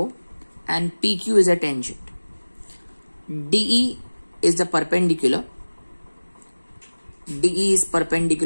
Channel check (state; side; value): inverted; both; correlation -1.00